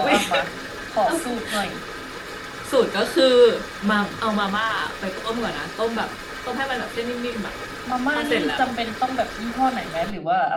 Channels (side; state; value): both; identical; correlation 1.00